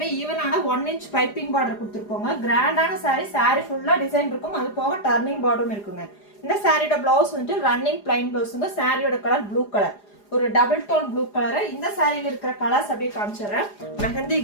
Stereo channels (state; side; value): late; right; 4.9 ms